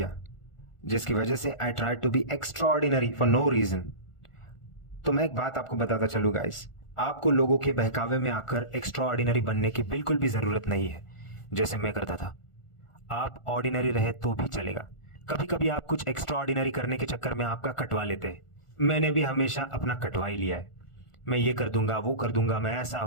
जिसकी वजह से I try to be extraordinary for no reason. तो मैं एक बात आपको बताता चलूँ गाइस, आपको लोगों के बहकावे में आकर एक्स्ट्राऑर्डिनरी बनने की बिल्कुल भी ज़रूरत नहीं है, जैसे मैं करता था. आप ऑर्डिनरी रहे तो भी चलेगा. कभी कभी आप कुछ एक्स्ट्राऑर्डिनरी करने के चक्कर में आपका कटवा लेते हैं. मैंने भी हमेशा अपना कटवा ही लिया है. मैं ये कर दूंगा, वो कर दूंगा, मैं ऐसा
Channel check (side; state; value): right; late; 1.4 ms